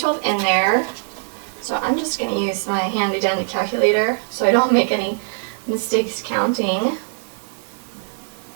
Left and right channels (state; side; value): silent; left; digital silence